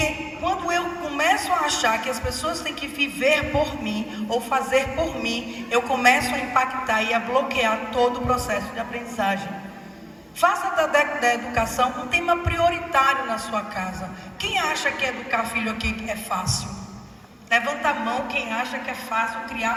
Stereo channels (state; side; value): identical; both; correlation 1.00